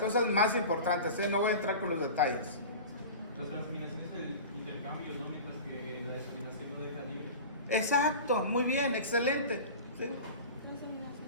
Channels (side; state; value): both; inverted; correlation -0.34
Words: más importantes, no voy a entrar con los detalles. Las transaminaciones es el intercambio, ¿no? Mientras que la desaminación no deja libre. Exacto, muy bien, excelente. ¿Sí?